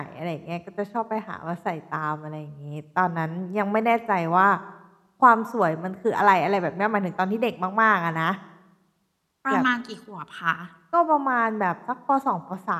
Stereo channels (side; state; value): both; identical; correlation 1.00